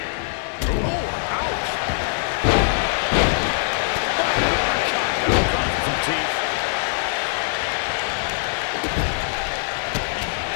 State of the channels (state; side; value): silent; right; digital silence